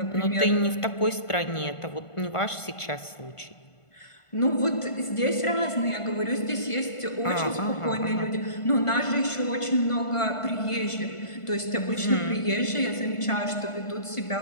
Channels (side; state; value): right; late; 1.5 ms